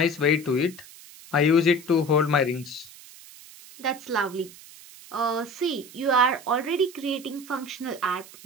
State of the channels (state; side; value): noise; right; hiss, 19 dB below the sound